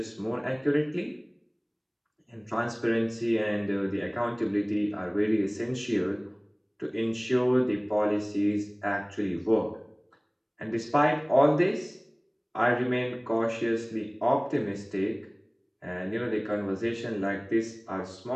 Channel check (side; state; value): both; identical; correlation 1.00